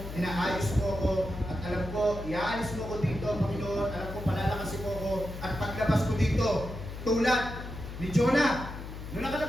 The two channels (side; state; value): left; noise; hum, 10 dB below the sound